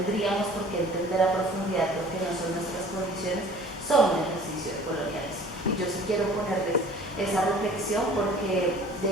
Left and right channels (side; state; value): both; normal; correlation 0.48